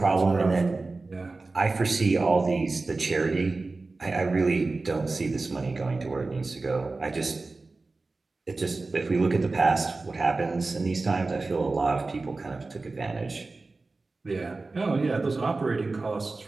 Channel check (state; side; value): quieter; left; 3.6 dB